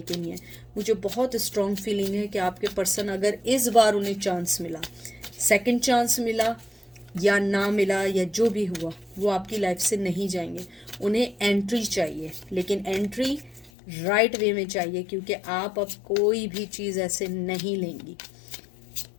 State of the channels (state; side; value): drops out; right; at 13.7 s